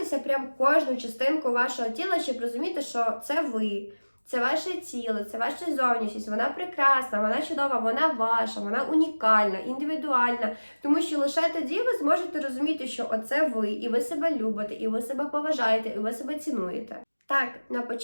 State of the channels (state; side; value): inverted; both; correlation -1.00